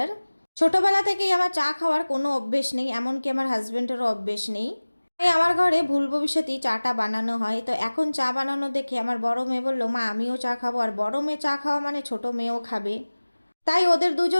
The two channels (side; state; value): both; inverted; correlation -1.00